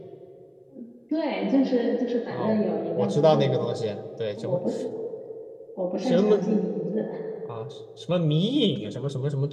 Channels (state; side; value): identical; both; correlation 1.00